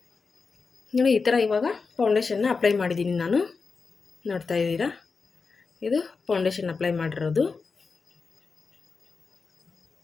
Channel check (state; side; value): quieter; right; 4.7 dB